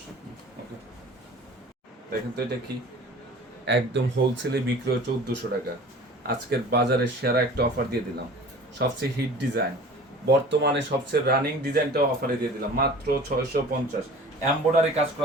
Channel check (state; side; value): normal; both; correlation 0.43